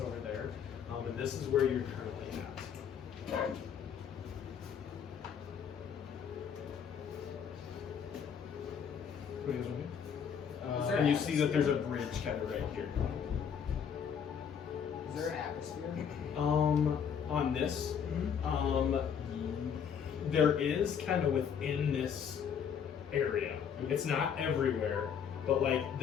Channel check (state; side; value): quieter; right; 7.6 dB